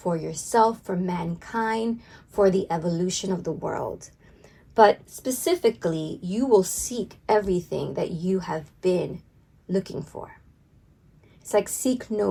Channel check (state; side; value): identical; both; correlation 1.00